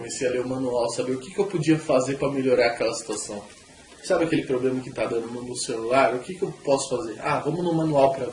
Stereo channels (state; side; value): identical; both; correlation 1.00